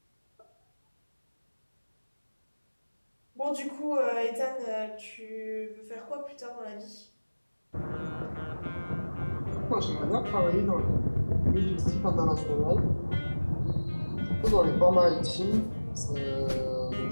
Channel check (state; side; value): inverted; both; correlation -1.00